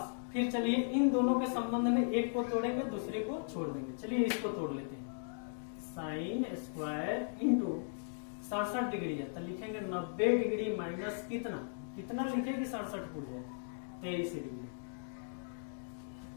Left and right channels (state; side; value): silent; right; digital silence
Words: फिर चलिए इन दोनों के संबंध में एक को तोड़ेंगे दूसरे को छोड़ देंगे। चलिए इसको तोड़ लेते हैं, साइन स्क्वायर इंटू 67 डिग्री है तो लिखेंगे 90 डिग्री माइनस कितना, कितना लिखेंगे 67 पूछ जाए 23 डिग्री,